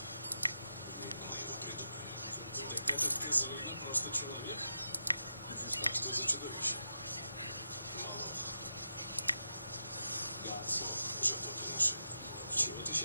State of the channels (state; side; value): inverted; both; correlation -0.86